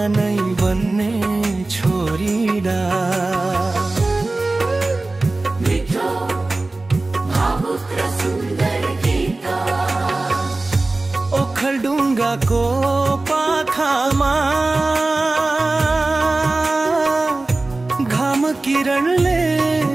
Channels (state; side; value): quieter; left; 3.1 dB